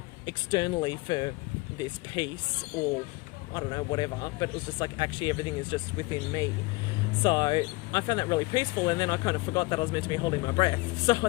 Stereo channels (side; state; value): right; quieter; 23.4 dB